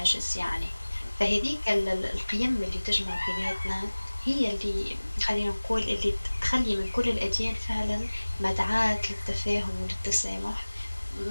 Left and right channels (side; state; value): both; inverted; correlation -1.00